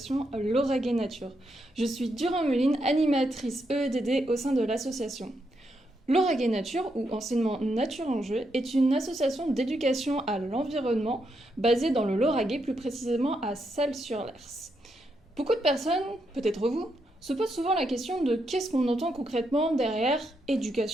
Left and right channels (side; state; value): both; normal; correlation 0.81